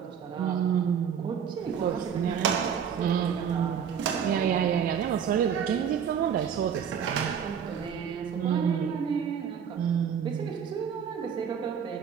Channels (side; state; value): left; quieter; 7.7 dB